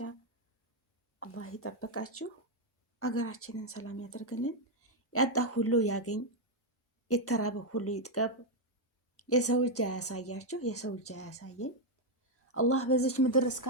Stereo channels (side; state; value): both; normal; correlation 0.02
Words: አላህ ይጠብቃችሁ፣ አገራችንን ሰላም ያደርግልን፣ ያጣ ሁሉ ያገኝ፣ የተራበ ሁሉ ይጥገብ፣ የሰው እጅ አያሳያችሁ፣ የሰው እጅ አያሳየን። አላህ በዚች ምድር